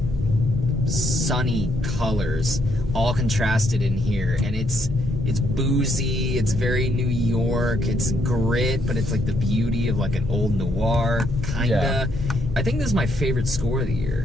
sunny colors all contrasted in here, and it's boozy, it's very New York, it's grit, but it's like the beauty of like an old noir, kinda. Yeah. I think this is my favorite score of the year.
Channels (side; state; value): both; normal; correlation 0.73